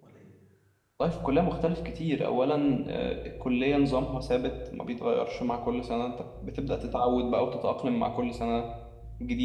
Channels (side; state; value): both; identical; correlation 1.00